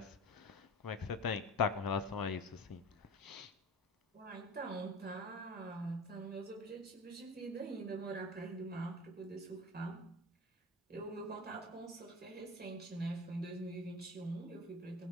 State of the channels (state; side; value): normal; both; correlation 0.33